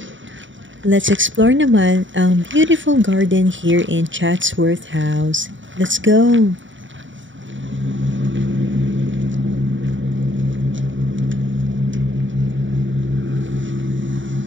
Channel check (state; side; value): late; left; 0.55 ms